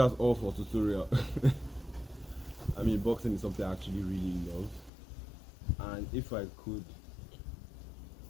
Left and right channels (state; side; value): drops out; right; at 4.9 s